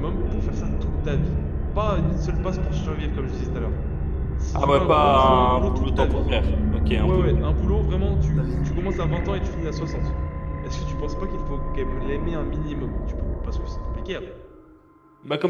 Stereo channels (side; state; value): both; identical; correlation 1.00